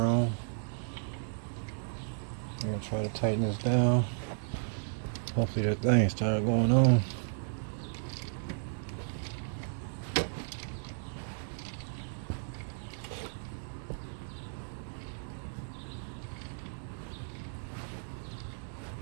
I'm gonna try to tighten this down. Hopefully that thing started going on.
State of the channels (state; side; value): silent; left; digital silence